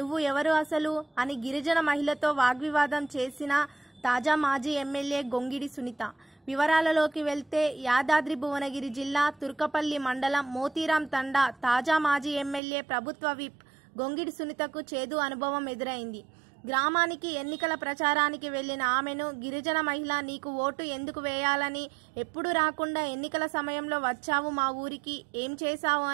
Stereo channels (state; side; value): drops out; left; at 12.6 s